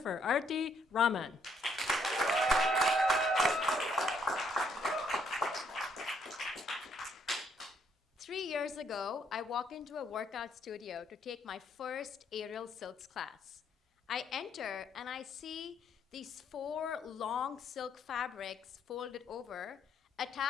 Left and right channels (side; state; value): both; normal; correlation 0.70